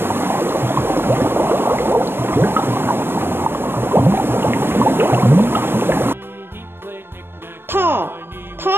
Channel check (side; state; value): left; late; 0.11 ms